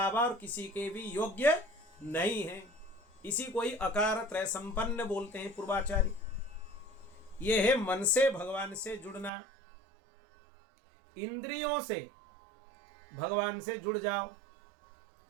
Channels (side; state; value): left; drops out; at 9.3 s